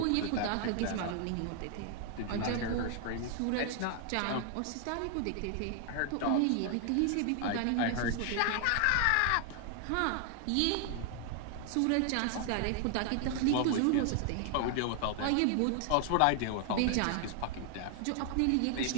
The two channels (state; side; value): different; both; correlation 0.00